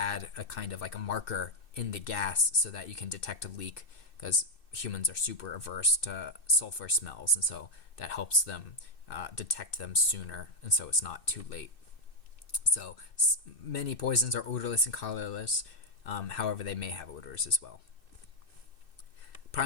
a kind of like a marker in the gas so that you can detect a leak, because humans are super averse to sulfur smells, and so that helps them detect them sooner, and so it's not too late. So many poisons are odorless and colorless. However, they may have odors as well.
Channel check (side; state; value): right; late; 2.6 ms